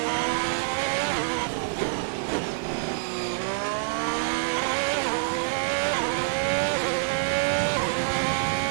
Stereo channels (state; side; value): silent; left; digital silence